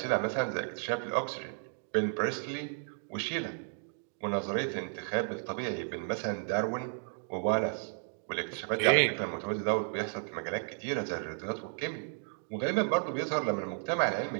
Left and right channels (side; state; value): left; silent; 56 dB below the other